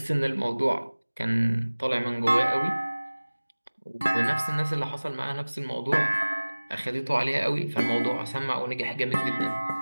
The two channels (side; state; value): both; inverted; correlation -1.00